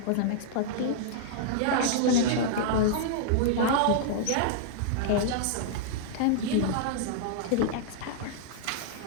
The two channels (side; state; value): both; different; correlation -0.02